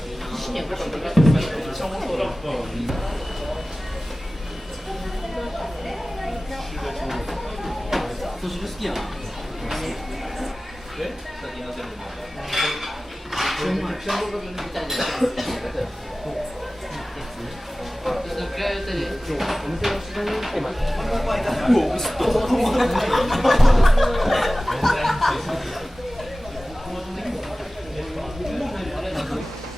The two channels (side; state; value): both; normal; correlation 0.97